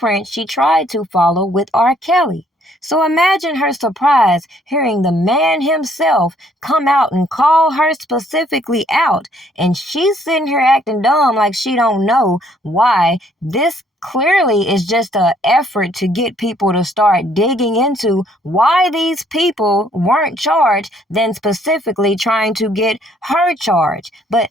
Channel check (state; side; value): normal; both; correlation 0.65